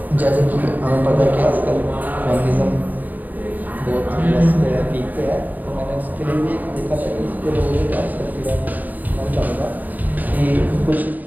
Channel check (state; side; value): late; left; 0.083 ms